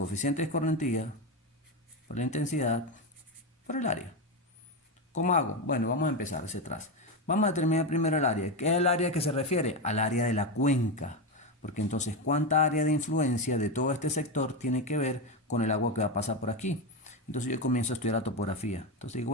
de escorrentía por la intensidad por el área. ¿Cómo hago? Bueno, vamos a empezar hacia atrás. Vamos a determinar primero el área. ¿Qué es el área que se refiere? Al área de la cuenca. Porque entonces, ¿cuánta área de influencia de todo este sector tiene que ver con el agua que va a pasar por aquí? Entonces yo comienzo a estudiar la topografía. Entonces digo,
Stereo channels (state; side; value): normal; both; correlation 0.12